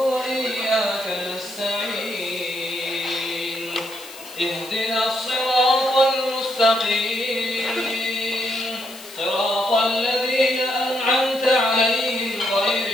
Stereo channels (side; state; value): left; noise; hiss, 17 dB below the sound